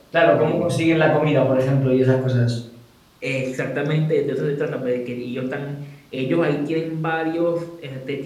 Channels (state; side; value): identical; both; correlation 1.00